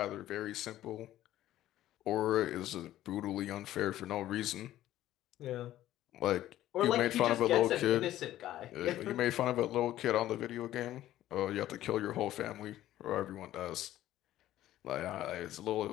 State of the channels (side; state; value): right; quieter; 13.7 dB